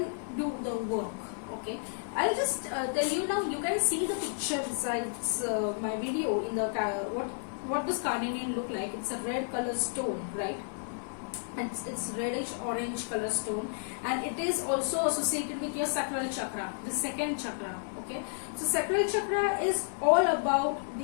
do the work. Okay, I'll just tell you now. You can see the picture besides my video in the what does carnelian look like. It's a red color stone, right? It's reddish orange color stone, and it is also associated with your sacral chakra, the second chakra. Okay, so sacral chakra is all about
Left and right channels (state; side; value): silent; right; 57 dB below the other